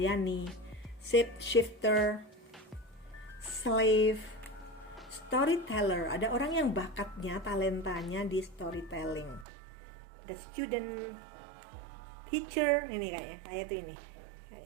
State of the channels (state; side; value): drops out; left; at 9.5 s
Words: Shifter, slave, storyteller, ada orang yang bakatnya, talentanya di storytelling. The student, teacher, ini kayaknya tuh ini